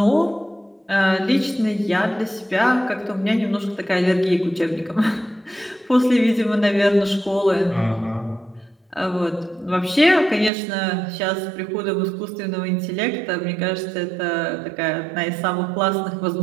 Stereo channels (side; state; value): left; drops out; at 10.5 s